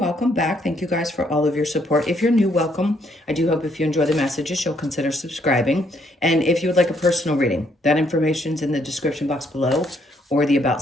back. Thank you guys for all of your support. If you're new, welcome. I do hope if you enjoy the messages, you'll consider subscribing. And if you would like a personal reading, that information's in the description box below or the About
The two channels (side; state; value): both; normal; correlation 0.71